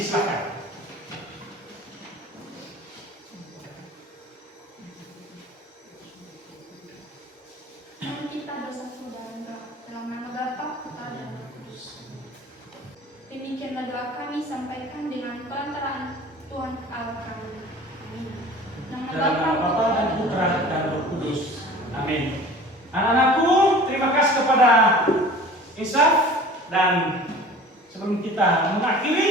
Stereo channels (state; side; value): normal; both; correlation 0.43